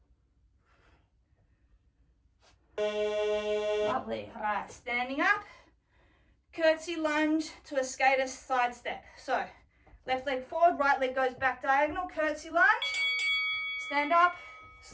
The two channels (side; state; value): both; identical; correlation 1.00